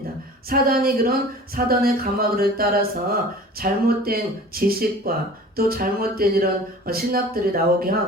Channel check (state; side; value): normal; both; correlation 0.43